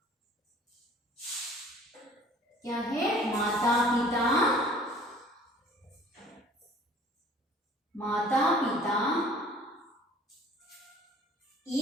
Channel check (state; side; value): normal; both; correlation 0.51